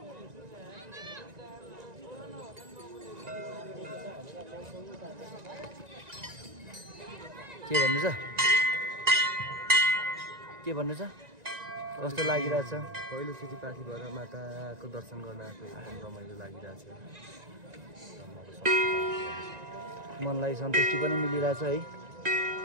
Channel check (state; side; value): late; left; 1.9 ms